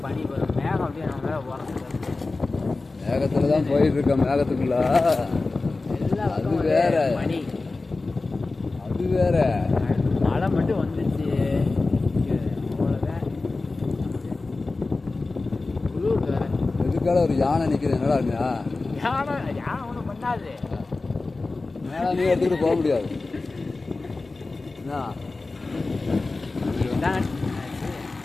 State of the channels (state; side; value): quieter; right; 3.5 dB